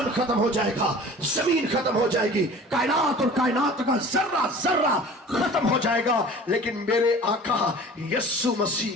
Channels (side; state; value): both; normal; correlation 0.43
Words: ختم ہو جائے گا، زمین ختم ہو جائے گی، کائنات اور کائنات کا ذرہ ذرہ ختم ہو جائے گا، لیکن میرے آقا یسوع مسیح